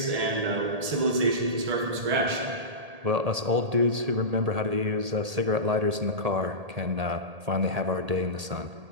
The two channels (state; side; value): late; left; 1.8 ms